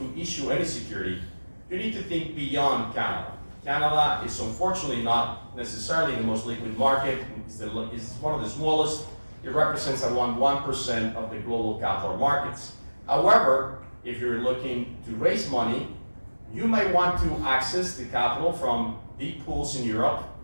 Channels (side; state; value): both; inverted; correlation -1.00